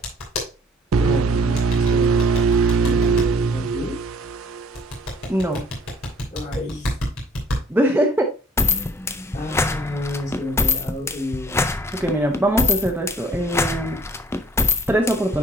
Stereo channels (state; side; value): normal; both; correlation 0.54